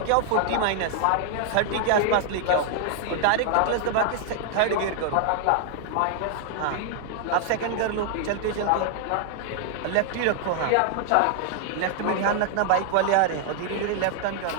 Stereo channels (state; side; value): different; both; correlation 0.00